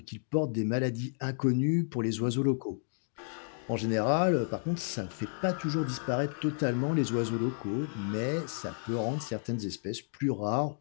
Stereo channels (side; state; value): right; silent; digital silence